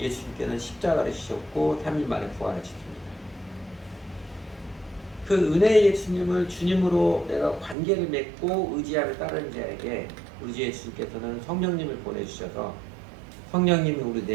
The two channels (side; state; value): left; drops out; at 7.8 s